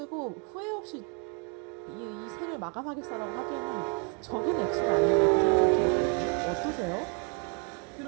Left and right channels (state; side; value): quieter; left; 37.1 dB